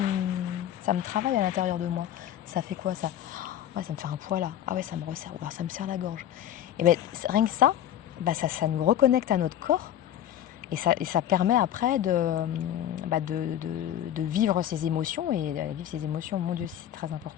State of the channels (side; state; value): right; quieter; 11.2 dB